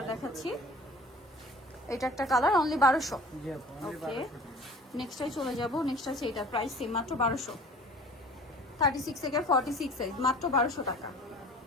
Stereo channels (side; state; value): both; normal; correlation 0.45